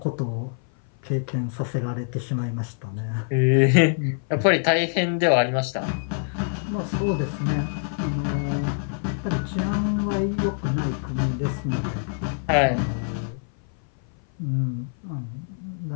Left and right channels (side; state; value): right; silent; 57 dB below the other